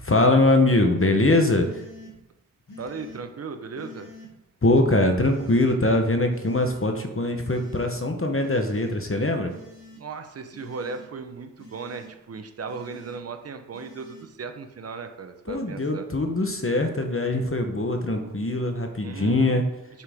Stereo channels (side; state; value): both; normal; correlation 0.39